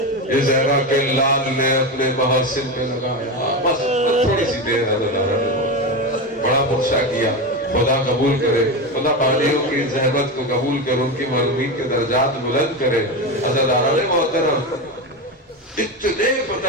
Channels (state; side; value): normal; both; correlation 0.18